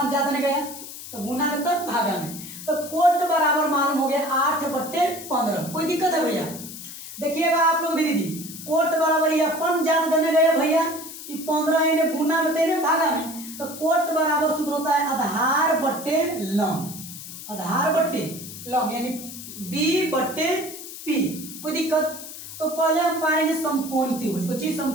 ज्यादा नहीं गया, तो गुना में तब भागा में, तो कोट बराबर मालूम हो गया 8 बट्टे 15, कोई दिक्कत है भैया। देखिएगा आप लोग भी दीदी कोट बराबर ये अपन ज्यादा देने गए भैया, 15 इन्हें गुना में तेने भागा में, तो कोट बराबर सूत्र होता है आधार बट्टे लंब, आधार बट्टे लंब यानी B बट्टे P, कोई दिक्कत। तो पहले हम पाएंगे समकोण त्रिभुज, कुछ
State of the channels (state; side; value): noise; left; hiss, 12 dB below the sound